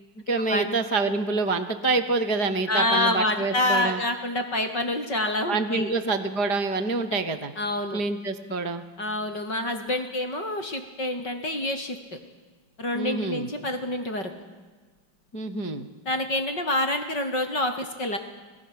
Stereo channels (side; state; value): right; late; 5.3 ms